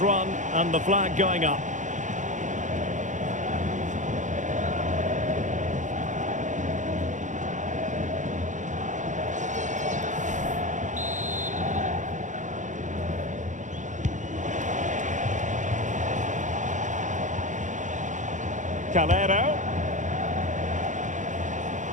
run, and the flag going up. Calero.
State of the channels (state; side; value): late; left; 0.36 ms